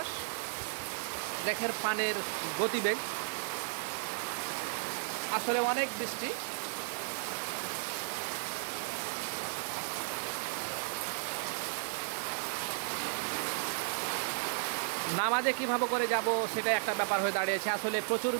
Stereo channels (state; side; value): silent; left; 55 dB below the other